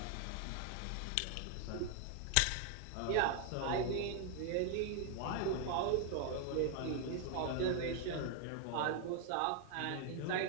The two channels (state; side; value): different; both; correlation 0.00